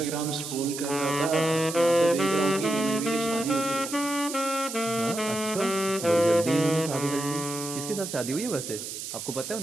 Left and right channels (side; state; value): right; noise; hiss, 8 dB below the sound